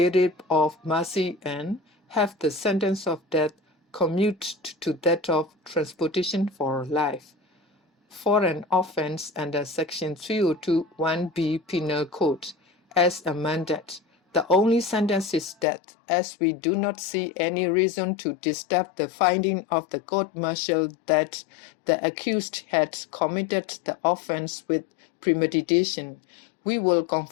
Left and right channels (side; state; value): right; drops out; at 15.7 s